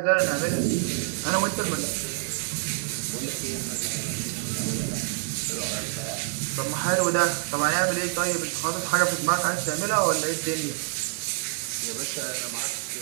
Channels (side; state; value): left; silent; digital silence